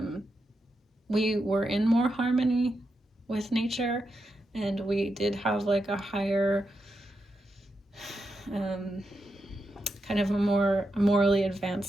we were in more harmony with nature, and we did have like a higher kind of a more morally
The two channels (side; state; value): both; normal; correlation 0.86